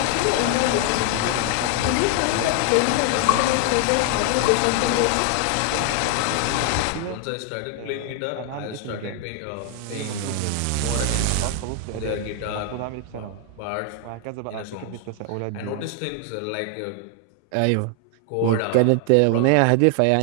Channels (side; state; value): both; different; correlation 0.00